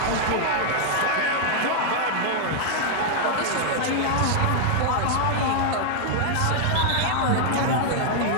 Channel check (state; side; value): different; both; correlation -0.01